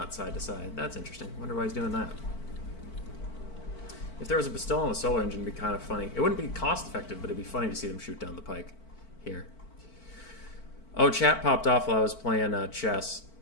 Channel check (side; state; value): right; late; 4.5 ms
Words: side to side. That's interesting. Wonder why he's doing that. If there was a Pistol and a Solar Engine, it'd be kind of funny. It wouldn't be cost effective, but it'd be funny to see them shoot down the pike here. Oh, chat popped off while I was playing chess.